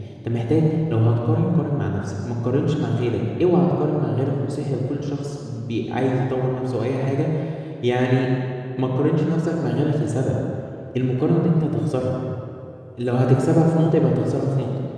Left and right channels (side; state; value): both; identical; correlation 1.00